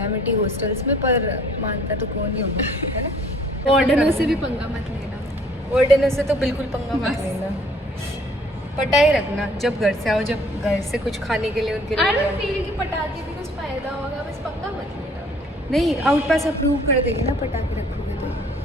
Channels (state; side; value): normal; both; correlation 0.57